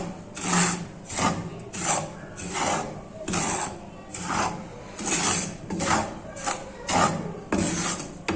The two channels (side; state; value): both; identical; correlation 1.00